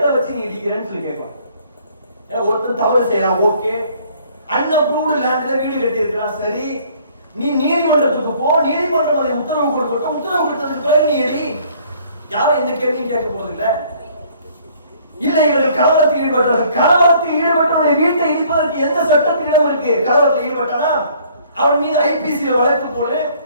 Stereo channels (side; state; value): both; inverted; correlation -0.59